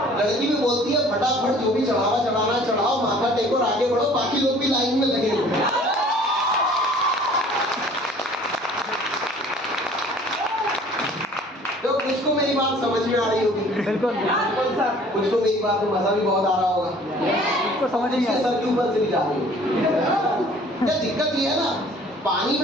लड़की भी बोलती है फटाफट जो भी चढ़ावा चढ़ाना चढ़ाओ, माथा टेको और आगे बढ़ो, बाकी लोग भी लाइन में लगे हुए। कुछ मेरी बात समझ में आ रही होगी, बिल्कुल कुछ को मेरी बात में मजा भी बहुत आ रहा होगा, उसको समझ नहीं आया सर के ऊपर से भी जा रही होगी। क्या दिक्कत ये है ना, पानी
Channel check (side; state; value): both; normal; correlation 0.52